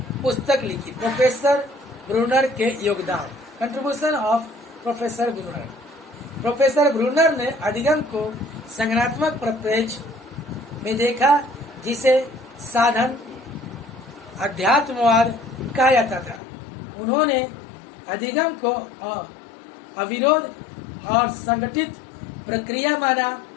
पुस्तक लिखी। प्रोफेसर ब्रूनर के योगदान। Contribution of professor Bruner. Professor Bruner ने अधिगम को संज्ञानात्मक परिप्रेक्ष्य में देखा, जिसे साधन अध्यात्मवाद कहा जाता था। उन्होंने अधिगम को अविरोध और संगठित प्रक्रिया माना।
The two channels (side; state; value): right; drops out; at 16.4 s